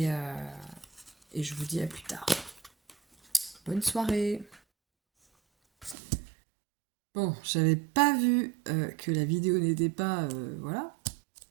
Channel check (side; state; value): left; drops out; at 6.0 s